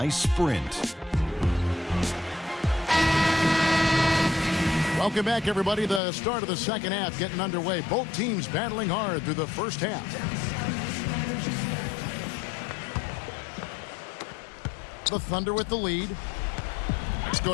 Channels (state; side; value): drops out; right; at 6.0 s